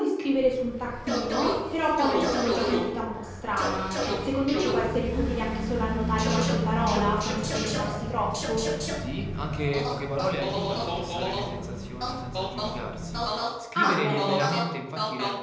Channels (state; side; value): identical; both; correlation 1.00